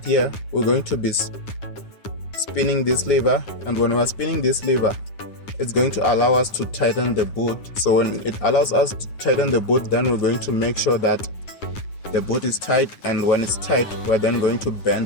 here, we're going to be spinning this lever, and when we're spinning this lever, it's going to allow us to tighten the boot. So when it allows us to tighten the boot, then we're going to make sure that the boot is tight, and when it's tight, we're then going to bend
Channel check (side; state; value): right; late; 9.7 ms